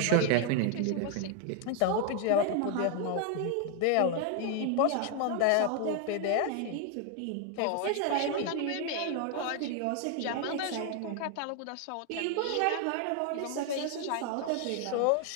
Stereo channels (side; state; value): both; different; correlation 0.00